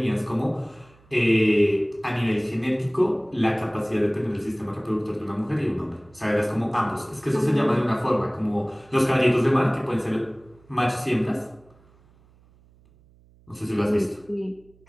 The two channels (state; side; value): noise; right; hum, 29 dB below the sound